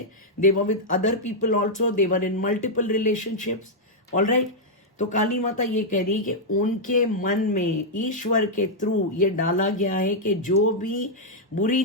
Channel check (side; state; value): both; normal; correlation -0.05